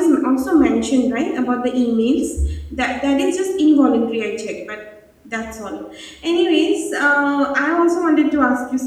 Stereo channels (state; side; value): identical; both; correlation 1.00